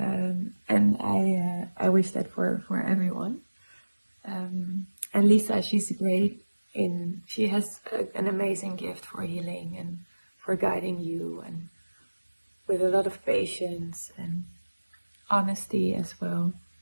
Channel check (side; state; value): both; inverted; correlation -1.00